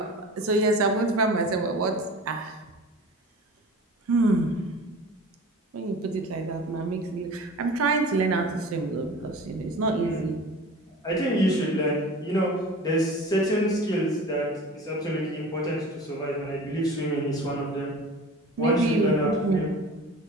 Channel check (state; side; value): normal; both; correlation 0.39